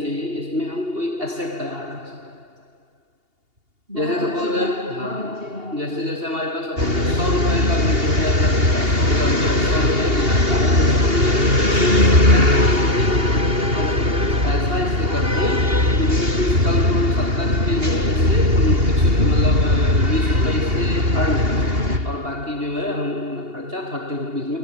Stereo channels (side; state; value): left; late; 2.8 ms